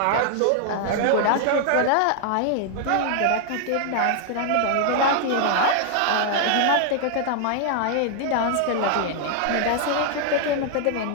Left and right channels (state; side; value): different; both; correlation 0.00